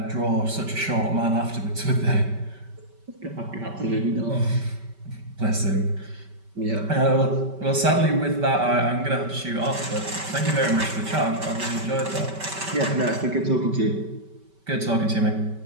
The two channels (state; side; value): late; left; 5.2 ms